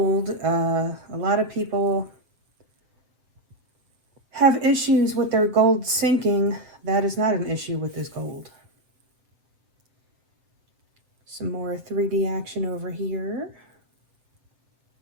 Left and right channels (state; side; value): late; left; 7.7 ms